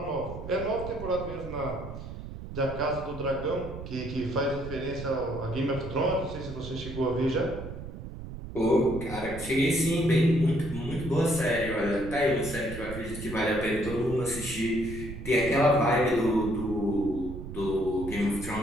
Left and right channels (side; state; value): right; noise; rumble, 10 dB below the sound